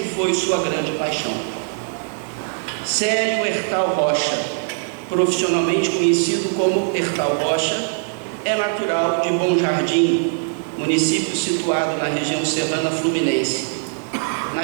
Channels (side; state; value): left; silent; digital silence